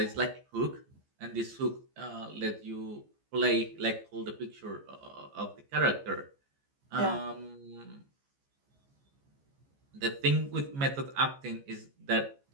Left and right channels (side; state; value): left; late; 14 ms